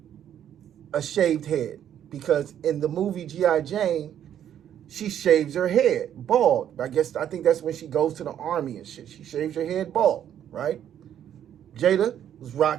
a shaved head, because in the movie G.I. Jane, she shaves her head bald. I think that's when she goes to the army and shit. She shaves her head bald, right? Jada was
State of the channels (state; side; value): quieter; left; 10.1 dB